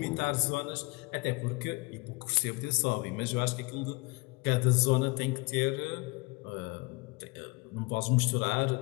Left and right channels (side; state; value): right; quieter; 26.6 dB